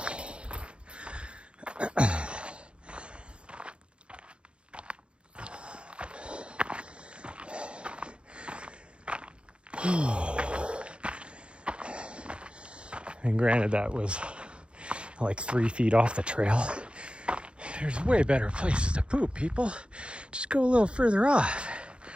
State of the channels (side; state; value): left; late; 0.057 ms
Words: And granted, that was like 3 feet off the trail. There's way better places to poop, people. Just go a little further off.